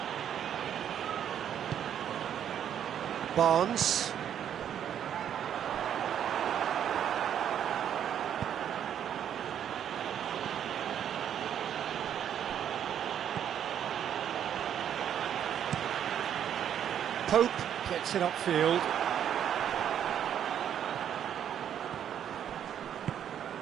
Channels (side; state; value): left; quieter; 9.5 dB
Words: Barnes. Coop gets it upfield.